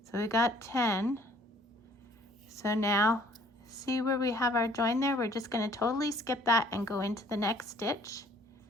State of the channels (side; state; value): both; normal; correlation 0.57